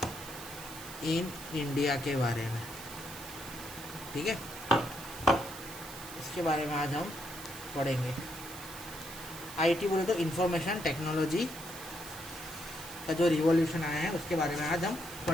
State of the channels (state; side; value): noise; right; hiss, 13 dB below the sound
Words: इन इंडिया के बारे में, ठीक है। इसके बारे में आज हम पढ़ेंगे। आईटी बोले तो इंफॉर्मेशन टेक्नोलॉजी का जो रिवॉल्यूशन आया है उसके बारे में आज हम